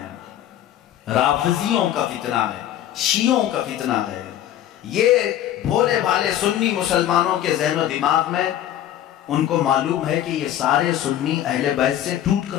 رافضیوں کا فتنہ ہے، شیعوں کا فتنہ ہے۔ یہ بھولے بھالے سنی مسلمانوں کے ذہن و دماغ میں ان کو معلوم ہے کہ یہ سارے سنی اہل بیت سے ٹوٹ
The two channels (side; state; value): right; quieter; 11.7 dB